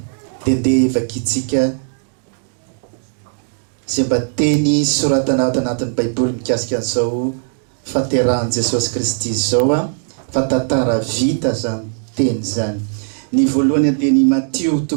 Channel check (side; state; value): left; silent; digital silence